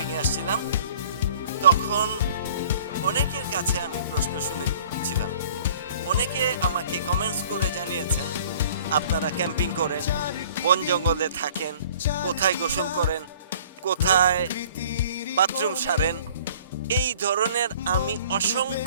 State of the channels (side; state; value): both; inverted; correlation -0.51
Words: এ আসছিলাম তখন অনেকের কাছে আমি প্রশ্ন শুনেছিলাম, অনেকে আমাকে কমেন্টস করে জানিয়েছেন আপনারা ক্যাম্পিং করেন, বন জঙ্গলে থাকেন, কোথায় গোসল করেন, কোথায় বাথরুম সারেন, এই ধরনের আমি